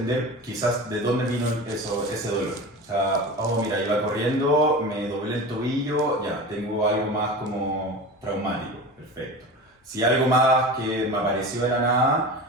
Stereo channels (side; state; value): both; normal; correlation 0.31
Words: quizás de dónde vino ese dolor. O sea, oh, mira, iba corriendo, me doblé el tobillo, ya, tengo algo más como traumático, perfecto. Si algo más que me apareció de la